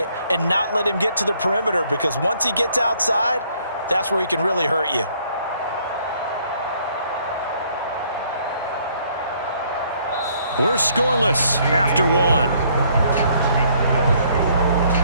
and not let him get to the perimeter, because once he gets outside, that's where he can really hurt you. We're scoreless after one.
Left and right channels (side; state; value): both; inverted; correlation -0.65